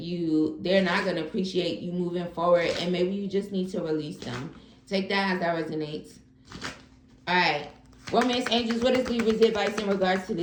They're not going to appreciate you moving forward, and maybe you just need to release them. Take that as that resonates. All right. Romance angels, what is Libra's advice in regards to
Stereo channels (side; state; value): both; identical; correlation 1.00